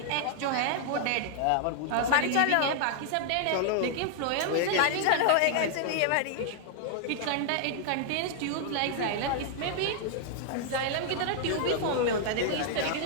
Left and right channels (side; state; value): both; different; correlation 0.00